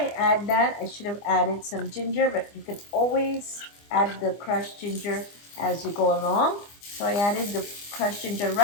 add that, I should have added some ginger, but you can always add the crushed ginger as you go along. So I added the crushed ginger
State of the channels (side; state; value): right; late; 25 ms